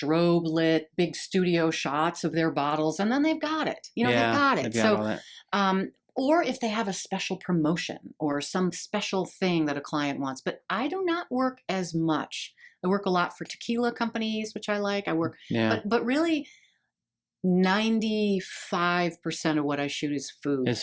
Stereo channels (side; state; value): both; identical; correlation 1.00